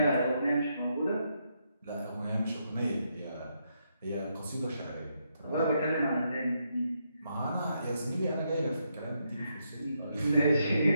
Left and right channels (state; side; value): inverted; both; correlation -0.79